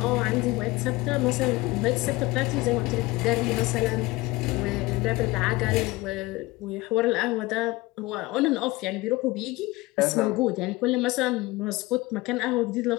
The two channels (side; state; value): right; quieter; 20.9 dB